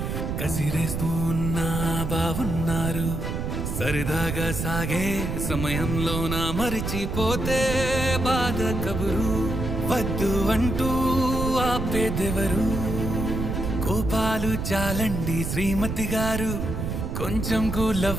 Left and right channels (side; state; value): right; noise; rumble, 3 dB below the sound